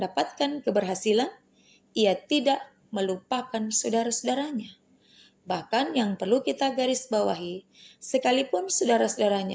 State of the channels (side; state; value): both; identical; correlation 1.00